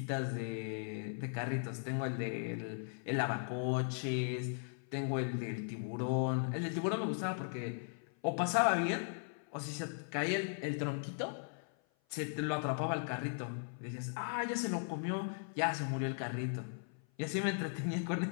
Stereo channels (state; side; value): silent; right; 52 dB below the other